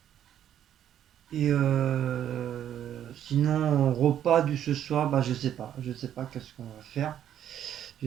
Et sinon, repas du ce soir, bah je sais pas qu'est-ce qu'on va faire.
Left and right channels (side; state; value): left; quieter; 10.4 dB